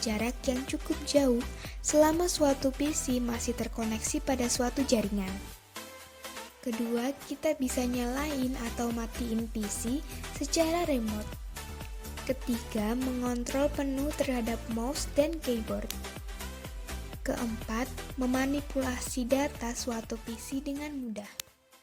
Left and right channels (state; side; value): identical; both; correlation 1.00